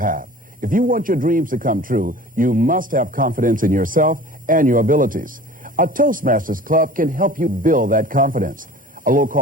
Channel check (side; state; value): both; normal; correlation 0.43